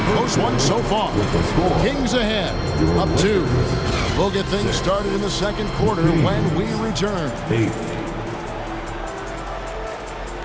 close one so far. Kings ahead, up 2. We'll get things started in the second quarter when we return. 8.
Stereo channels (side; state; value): both; identical; correlation 1.00